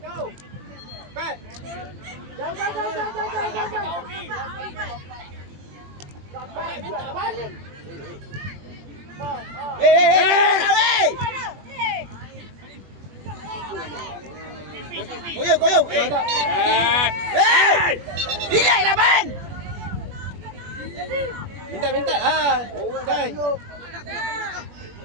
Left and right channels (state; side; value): late; left; 21 ms